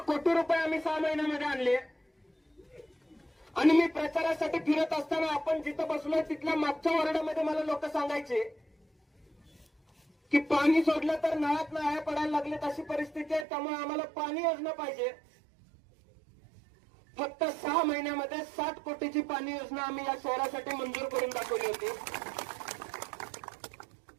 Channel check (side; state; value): left; drops out; at 13.5 s